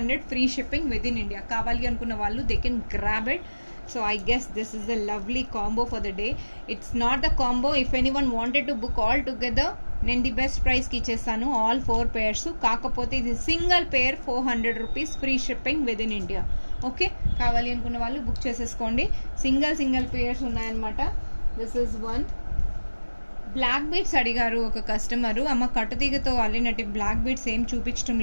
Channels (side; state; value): both; inverted; correlation -1.00